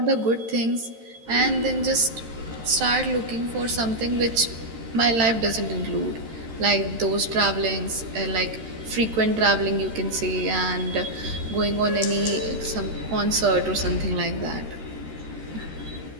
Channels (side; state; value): left; late; 13 ms